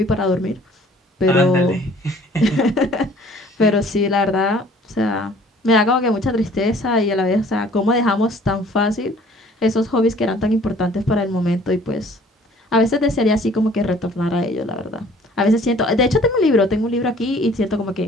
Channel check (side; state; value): both; normal; correlation 0.54